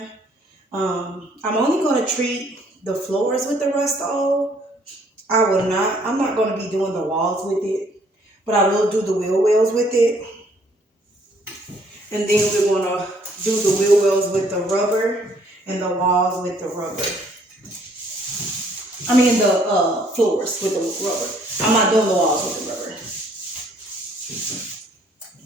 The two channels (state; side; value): normal; both; correlation 0.63